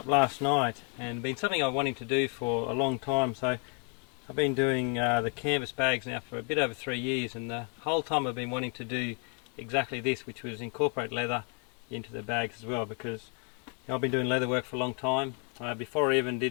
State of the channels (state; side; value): quieter; right; 38.8 dB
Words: last night, and been something I've wanting to do for a long time. So I've been doing the canvas bags now for a bit over 3 years, and the whole time I've been wanting to do exactly this, which was incorporate leather into the bags as well, because I've been doing leather work for a long time. Before I even